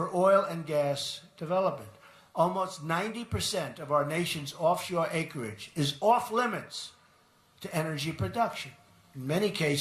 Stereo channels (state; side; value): identical; both; correlation 1.00